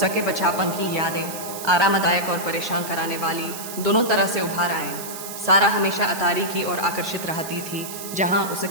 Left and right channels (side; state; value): right; noise; hiss, 10 dB below the sound